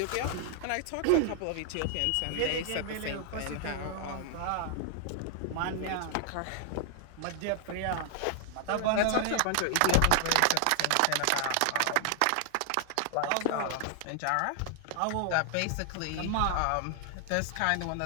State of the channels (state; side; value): different; both; correlation 0.00